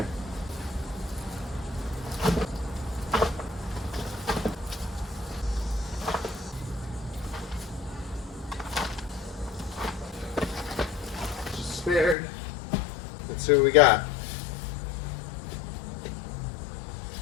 Just spared. Let's see what we got.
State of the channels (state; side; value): drops out; right; at 12.2 s